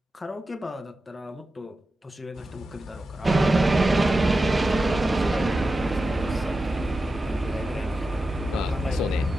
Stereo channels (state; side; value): normal; both; correlation 0.92